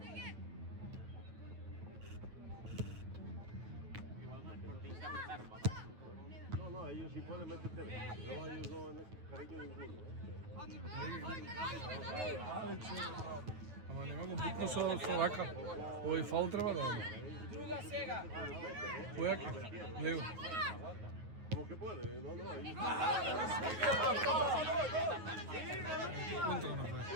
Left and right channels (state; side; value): late; left; 9.3 ms